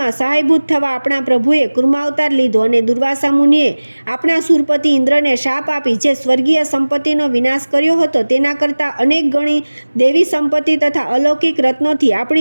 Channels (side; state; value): both; inverted; correlation -1.00